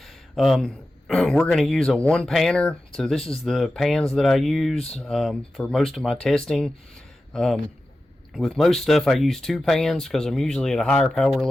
We're going to use a one panner, so this is the pans that I use for most of my testing. With most stuff I use two pans because I'm usually at a higher power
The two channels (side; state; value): both; normal; correlation 0.93